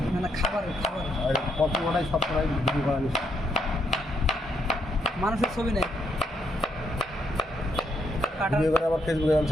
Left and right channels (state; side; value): normal; both; correlation 0.76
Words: মানে খাবার আর কত ওটাই সব করাই ভিডিও করা নিষেধ মানুষের ছবি নেই কাটার ভিডিও করে আবার ফেসবুকে আমি